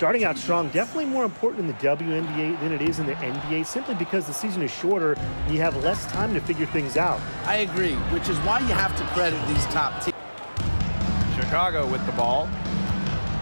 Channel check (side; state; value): both; inverted; correlation -1.00